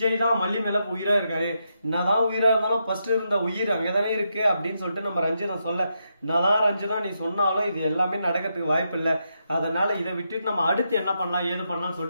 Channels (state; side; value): inverted; both; correlation -0.82